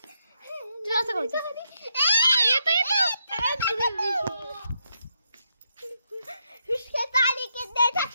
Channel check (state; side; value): inverted; both; correlation -0.80